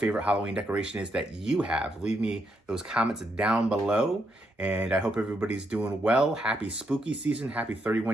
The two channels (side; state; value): both; normal; correlation 0.79